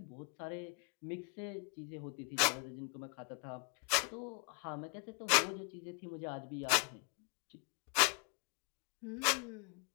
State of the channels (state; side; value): quieter; right; 36.6 dB